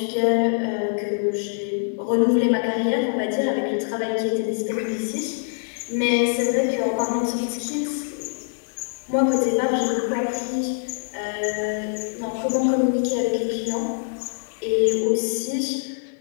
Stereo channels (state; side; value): silent; right; 63 dB below the other